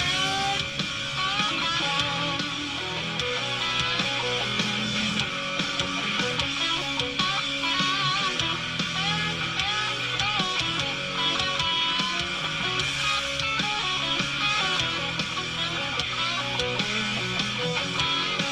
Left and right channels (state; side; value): identical; both; correlation 1.00